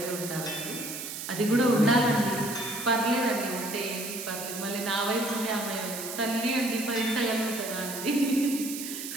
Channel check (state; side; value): noise; right; hiss, 7 dB below the sound